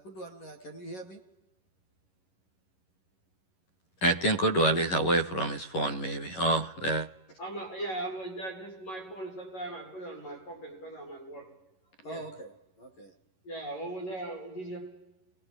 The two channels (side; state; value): right; late; 11 ms